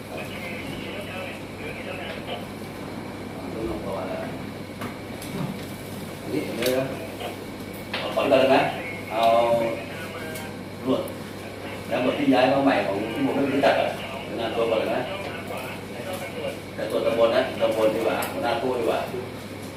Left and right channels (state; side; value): identical; both; correlation 1.00